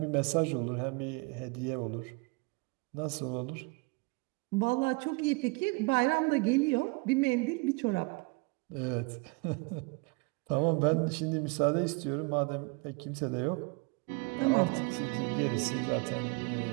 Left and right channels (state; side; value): quieter; left; 29.6 dB